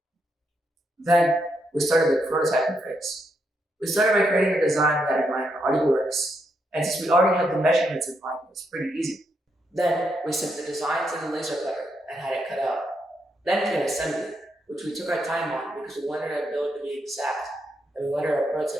Then we started the prototyping phase. We started by creating a design that in mind already works, and since we already had the measurements in mind, it was pretty easy. Then we sent the design to the laser cutter and had it cut out. Then came assembly, which we took our time on because we wanted our build to be exact and we wanted our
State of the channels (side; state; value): both; normal; correlation 0.79